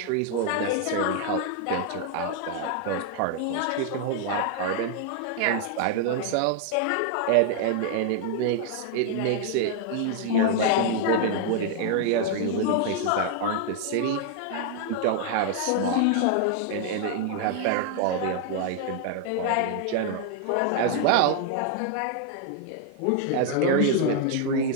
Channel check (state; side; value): different; both; correlation 0.00